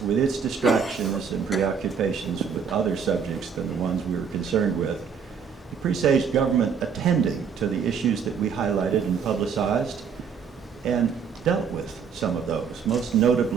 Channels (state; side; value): quieter; left; 6.6 dB